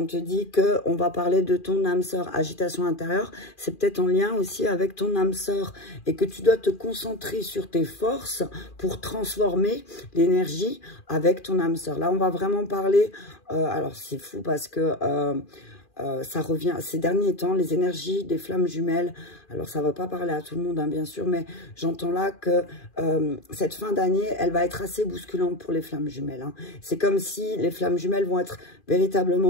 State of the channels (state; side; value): late; right; 2.4 ms